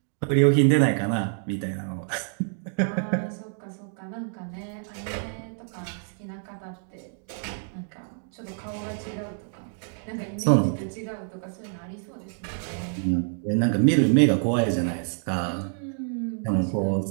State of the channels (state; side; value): silent; left; 58 dB below the other